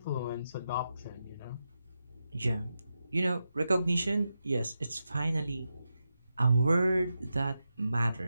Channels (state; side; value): inverted; both; correlation -0.89